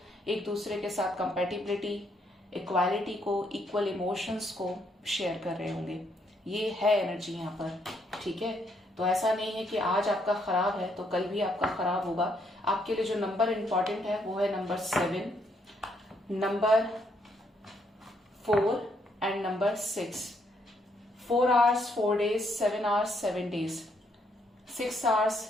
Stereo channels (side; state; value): both; normal; correlation 0.73